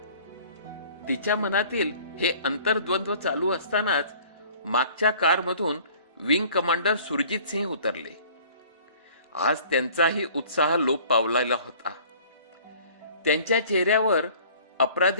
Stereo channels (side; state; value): both; inverted; correlation -0.50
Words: तिच्या मनातील हे अंतर्द्वंद्व चालू असतानाच मागच्या कारमधून विंग कमांडर सुरजित सिंह उतरले. आज त्यांचाही उत्साह लोप पावलेला होता. त्यांच्या चेहऱ्यावर